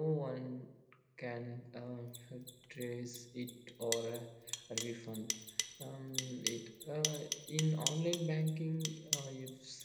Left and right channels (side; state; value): both; identical; correlation 1.00